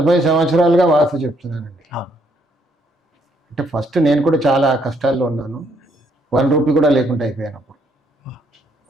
సంవత్సరాలుగా వాస్తు చెప్తున్నానండి. అంటే ఫస్ట్ నేను కూడా చాలా కష్టాల్లో ఉన్నాను. 1 రూపీ కూడా లేకుండా అయిపోయాను అప్పుడు.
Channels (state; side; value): normal; both; correlation 0.70